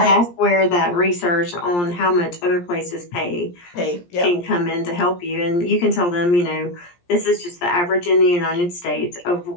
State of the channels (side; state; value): right; late; 17 ms